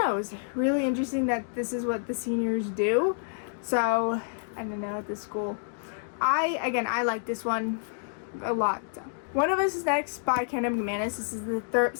know, it was really interesting that this is what the seniors do. So, I don't know, at this school. I like this one a lot. So. One of Us Is Next by Karen M. McManus. This is the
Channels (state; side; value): silent; right; digital silence